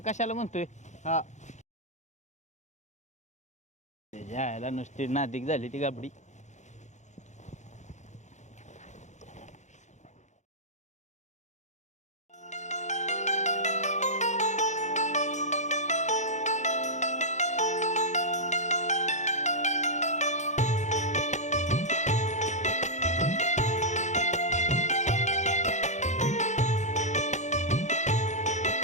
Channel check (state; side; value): late; right; 0.34 ms